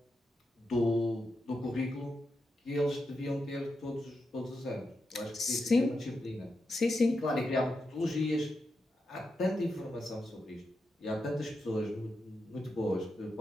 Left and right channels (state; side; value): normal; both; correlation 0.87